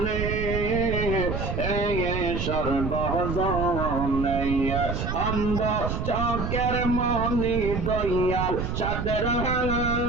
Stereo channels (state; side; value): noise; right; rumble, 3 dB below the sound